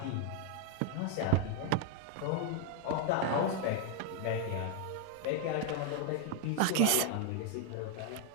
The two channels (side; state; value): both; different; correlation 0.00